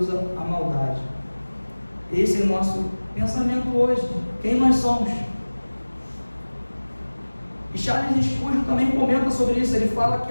a maldade. Esse é o nosso pensamento hoje. Quem nós somos? E Charles Spurgeon também comenta sobre isso. Ele fala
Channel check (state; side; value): inverted; both; correlation -1.00